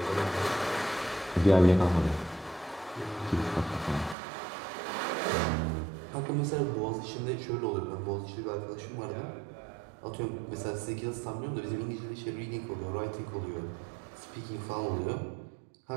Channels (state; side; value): drops out; left; at 4.2 s